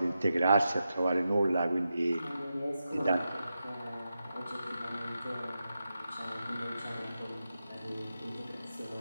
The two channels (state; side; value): inverted; both; correlation -0.89